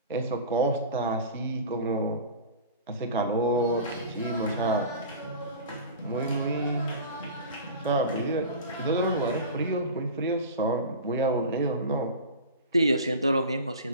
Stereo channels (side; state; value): both; inverted; correlation -0.34